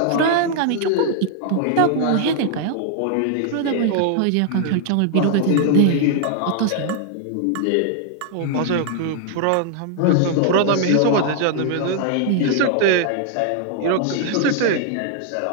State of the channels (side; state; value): both; different; correlation 0.00